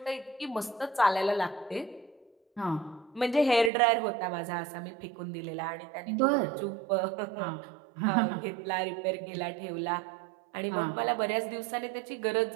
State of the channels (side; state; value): left; drops out; at 3.7 s